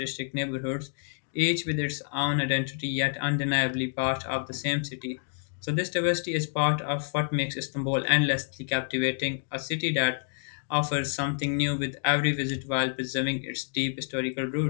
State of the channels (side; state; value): right; silent; 59 dB below the other